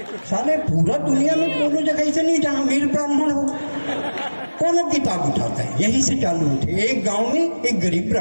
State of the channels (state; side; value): inverted; both; correlation -1.00